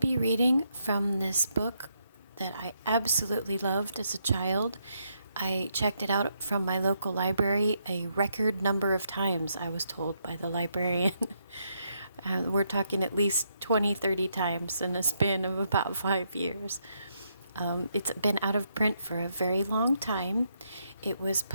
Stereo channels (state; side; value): inverted; both; correlation -0.77